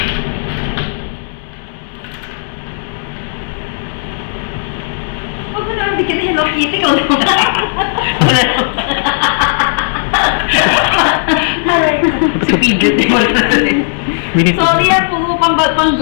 Huwag mo naman bigyan na Hello Kitty ko naman. Si Pidget, di mo Sorry yan, puro pang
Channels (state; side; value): silent; right; digital silence